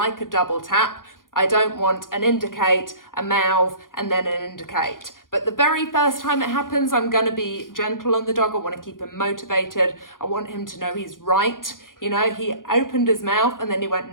a double tap, I don't want an indicate, a mouth, and then an indicate. But the very first time it happens, I'm going to be gentle on the dog. I want to keep him motivated. I want him to know he's right. You know, he opened his mouth and then he went,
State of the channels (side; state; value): right; late; 0.90 ms